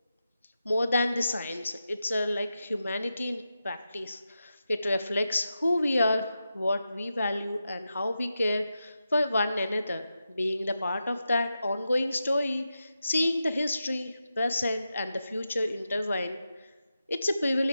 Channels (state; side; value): inverted; both; correlation -0.90